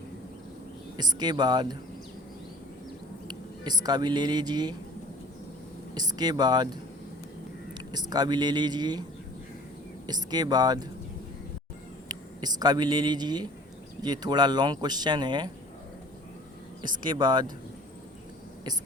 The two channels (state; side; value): normal; both; correlation 0.47